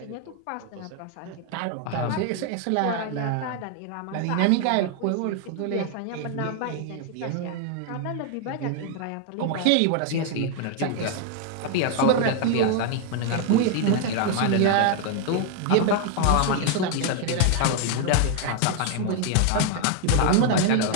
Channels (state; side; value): different; both; correlation 0.00